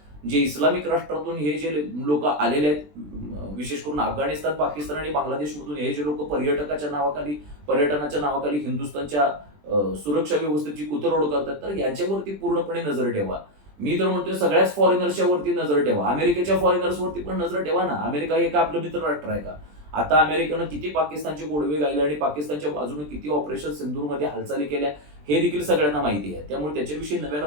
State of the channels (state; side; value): late; left; 20 ms